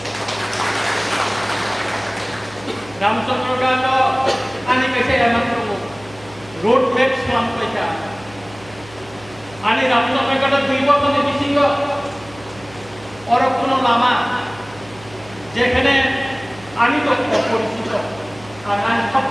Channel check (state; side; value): noise; right; hum, 21 dB below the sound